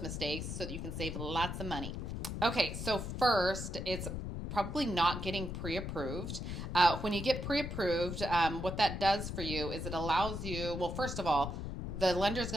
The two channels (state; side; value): noise; left; rumble, 5 dB below the sound